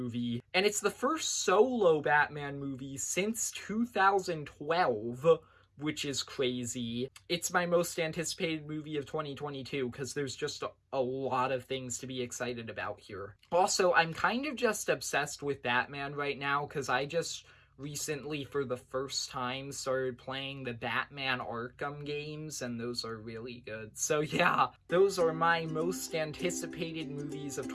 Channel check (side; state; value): both; identical; correlation 1.00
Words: and it's the first solo Batman movie since 2012, which is crazy. It's my most anticipated movie of 2022 because there's just a lot of things to be excited about here. Also, I'm kind of just obsessed with Batman right now because I just recently, for the first time, started playing the Batman Arkham games, and those are really good. So yeah, those are my most anticipated movies of